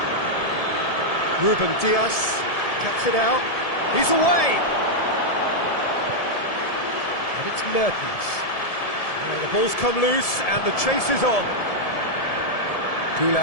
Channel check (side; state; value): right; late; 1.7 ms